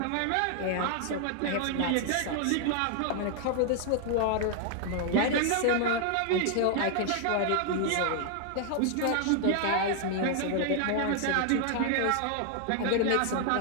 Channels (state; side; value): different; both; correlation 0.00